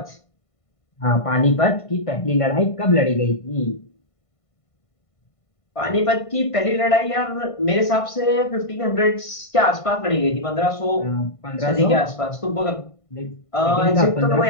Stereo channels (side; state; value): right; late; 1.5 ms